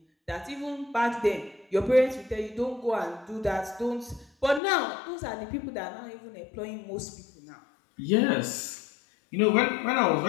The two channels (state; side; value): drops out; right; at 4.6 s